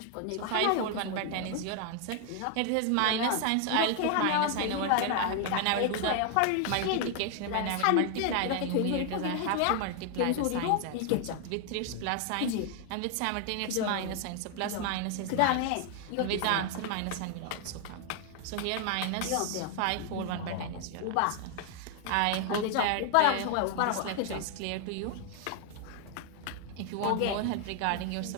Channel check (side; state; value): both; different; correlation 0.00